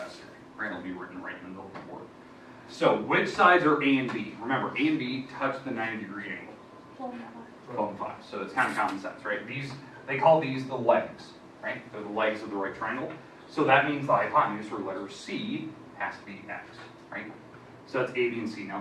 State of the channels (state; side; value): identical; both; correlation 1.00